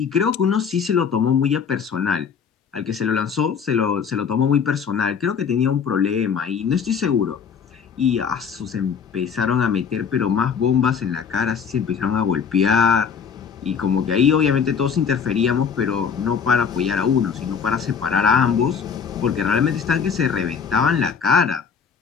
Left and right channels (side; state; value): right; quieter; 6.6 dB